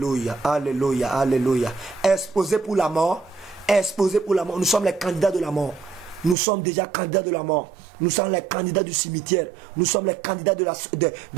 alléluia, alléluia. Exposé pour la mort, exposé pour la mort. Nous sommes les candidats de la mort. Nous sommes déjà candidats de la mort. Nous sommes les candidats du cimetière. Nous sommes les candidats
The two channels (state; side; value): drops out; left; at 6.4 s